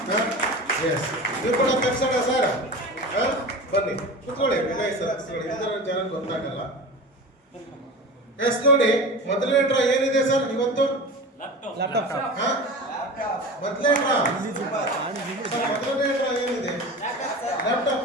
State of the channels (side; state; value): both; normal; correlation 0.32